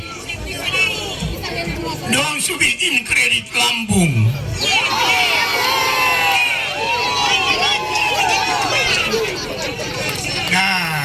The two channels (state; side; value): identical; both; correlation 1.00